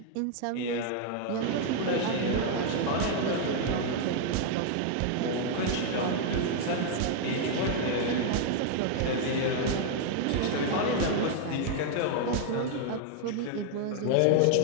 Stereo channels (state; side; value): different; both; correlation 0.00